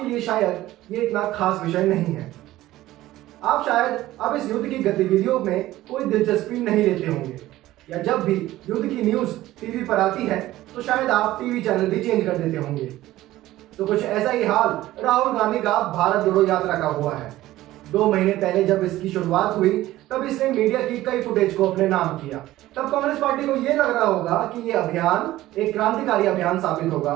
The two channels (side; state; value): left; quieter; 15.7 dB